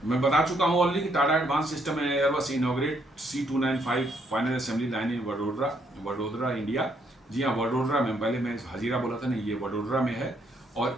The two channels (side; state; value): both; normal; correlation 0.72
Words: मैं बता चुका हूं ऑलरेडी कि Tata advance system and Airbus inaugurate C295 final assembly line in Vadodara India. जी हाँ, वडोदरा में, पहले मैं हजीरा बोला था नहीं, ये वडोदरा में है